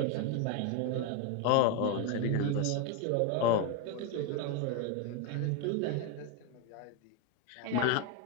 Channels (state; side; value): different; both; correlation 0.01